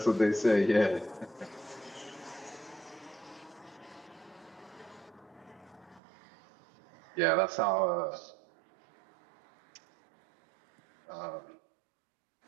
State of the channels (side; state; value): left; drops out; at 6.0 s